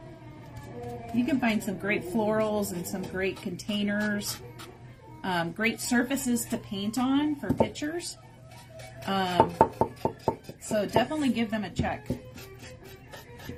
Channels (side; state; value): both; identical; correlation 1.00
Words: you can find some great florals and some great containers, great surfaces to paint on for pictures. So definitely give them a check.